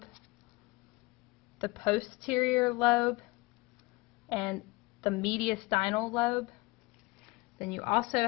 the posterior lobe, and the mediastinal lobe. Then you also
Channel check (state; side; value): quieter; right; 23.5 dB